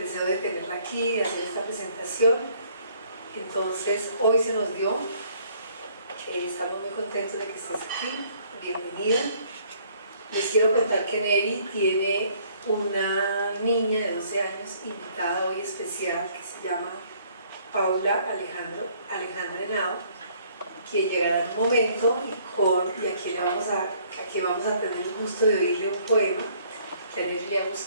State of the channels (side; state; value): both; inverted; correlation -0.61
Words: de tenerla aquí, de hacer esta presentación. Entonces, hoy se nos dio. Estamos muy contentos de que estés aquí. Bienvenida. Les quiero contar que Neri tiene una niña de 12 años invitada hoy especial que se llama Paula Alejandra Henao, que llegará en un momento y aquí vamos a tener el gusto de oírle un poema que a Neri le ha